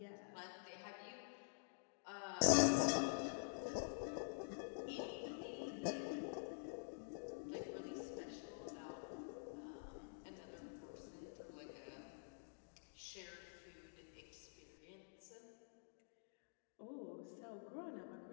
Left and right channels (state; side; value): silent; right; digital silence